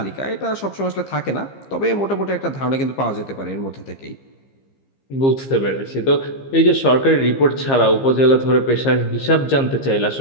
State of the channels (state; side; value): late; right; 15 ms